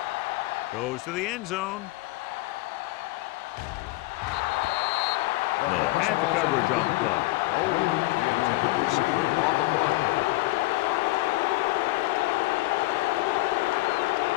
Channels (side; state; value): right; quieter; 20.2 dB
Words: Goes to the end zone. Miller had the coverage on the play. The intended receiver on the play.